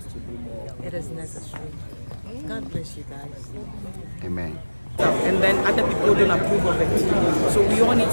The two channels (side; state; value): both; inverted; correlation -1.00